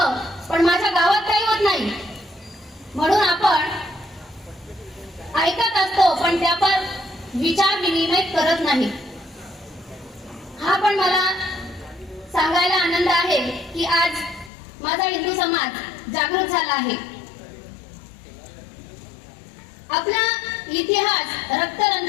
पण माझ्या गावात काही होत नाही. म्हणून आपण ऐकत असतो पण त्यावर विचार विनिमय करत नाही. हा पण मला सांगायला आनंद आहे की आज माझा हिंदू समाज जागृत झाला आहे. आपला इतिहास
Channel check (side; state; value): right; drops out; at 14.5 s